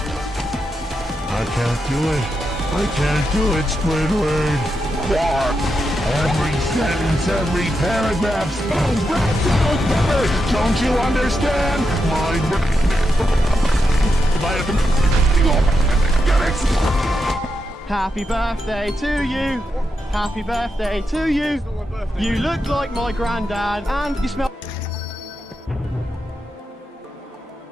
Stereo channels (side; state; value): both; normal; correlation 0.85